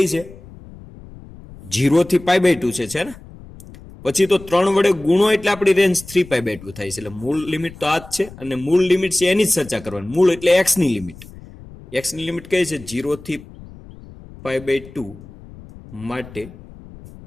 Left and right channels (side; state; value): left; noise; rumble, 18 dB below the sound